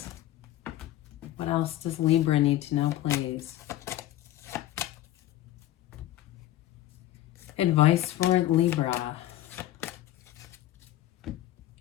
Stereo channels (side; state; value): right; quieter; 14.0 dB